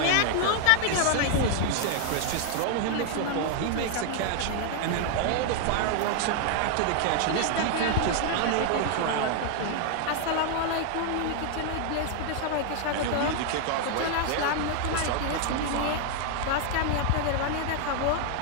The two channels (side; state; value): both; different; correlation 0.00